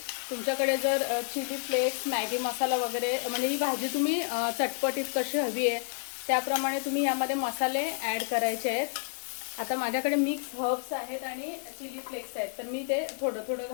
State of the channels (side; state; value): right; silent; digital silence